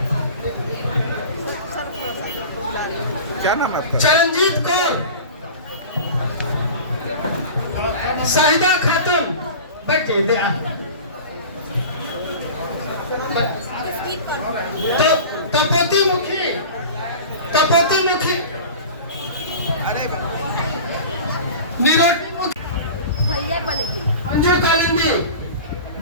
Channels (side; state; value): both; inverted; correlation -0.35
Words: क्या नाम है आपका? चरणजीत कौर, शाहिदा खातून, बैठे दे तपोती मुखी, तपोती मुखी, निरोटी मुखी, भैया बोलेगी मंजू कालिंदी,